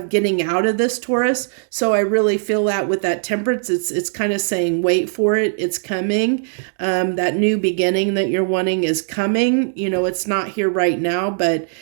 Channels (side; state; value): left; silent; digital silence